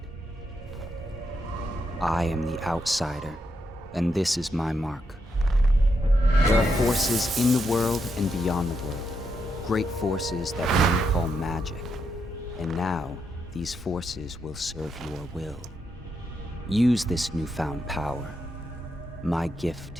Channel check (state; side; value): normal; both; correlation 0.81